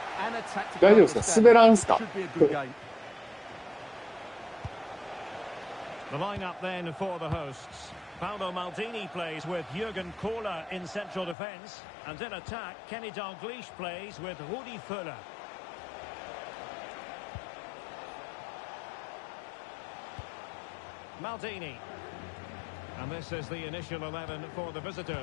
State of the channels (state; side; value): drops out; right; at 11.4 s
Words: and a tactical understanding. It should be a good game. The lineup then for the hosts. Paolo Maldini plays with Jürgen Kohler in central defence. And in attack, Kenny Dalglish plays with Rudi Völler. Maldini. And this is the initial 11 for the